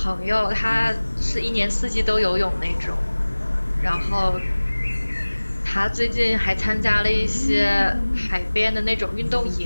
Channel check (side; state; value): both; inverted; correlation -1.00